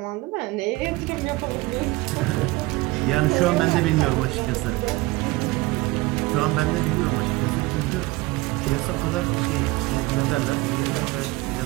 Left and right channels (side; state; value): left; quieter; 21.3 dB